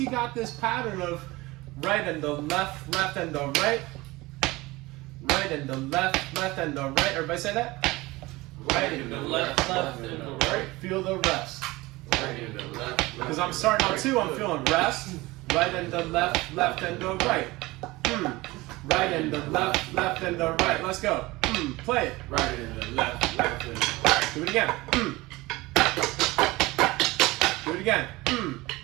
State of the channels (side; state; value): left; quieter; 20.9 dB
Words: got this pattern of right and the left, left and the right, right and the left, left and the right. Everybody say that? Right and the left, left and the right. Feel the rest. Right and the left, left. Because I'm starting on 2, I'm feeling rest. Right and the left, left and the right. Right and the left, left and the right. Let's go. Play it. Right and the left, left and the right. Do it again. Do it again.